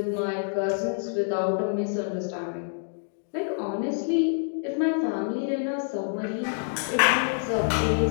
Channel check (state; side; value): silent; right; digital silence